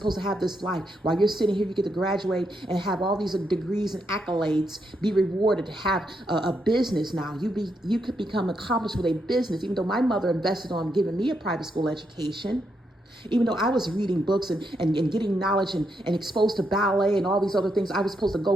to have this life. While you're sitting here, you get to graduate and have all these degrees and accolades, be rewarded, have a business now. You could become accomplished with a business, even though my mother invested on giving me a private school education. Even though I was reading books and getting knowledge and exposed to ballet and all these other things, I was supposed to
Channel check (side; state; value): both; normal; correlation 0.80